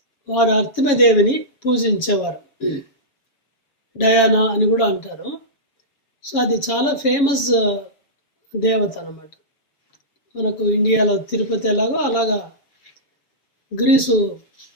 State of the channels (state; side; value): late; right; 7.1 ms